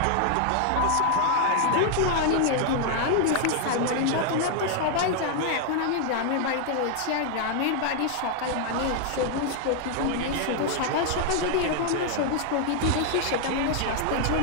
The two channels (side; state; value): both; different; correlation 0.00